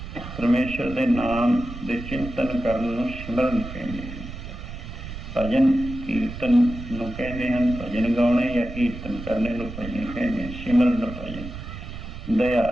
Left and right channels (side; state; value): right; noise; rumble, 10 dB below the sound